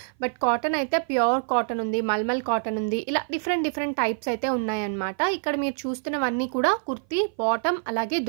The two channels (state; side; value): silent; left; 57 dB below the other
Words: బట్ కాటన్ అయితే ప్యూర్ కాటన్ ఉంది, మల్మల్ కాటన్ ఉంది, ఇలా డిఫరెంట్ టైప్స్ అయితే ఉన్నాయన్నమాట. ఇక్కడ మీరు చూస్తున్నవన్నీ కూడా కుర్తీ బాటమ్ అలాగే